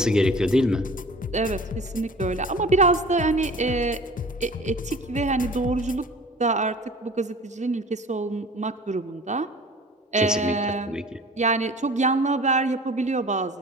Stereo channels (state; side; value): normal; both; correlation 0.44